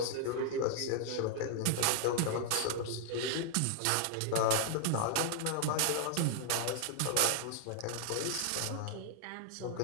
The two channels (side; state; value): both; different; correlation 0.00